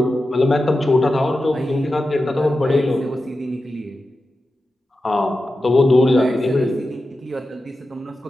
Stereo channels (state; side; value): normal; both; correlation 0.92